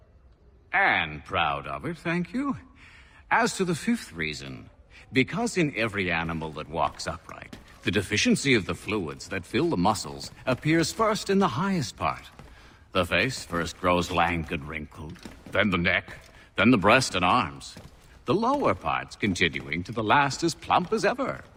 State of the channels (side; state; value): both; identical; correlation 1.00